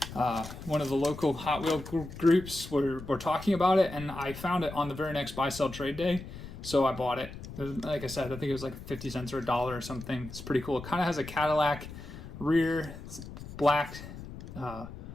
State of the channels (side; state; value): left; noise; rumble, 12 dB below the sound